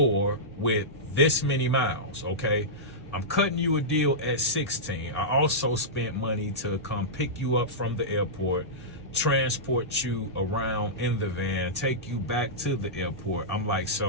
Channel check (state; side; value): normal; both; correlation -0.14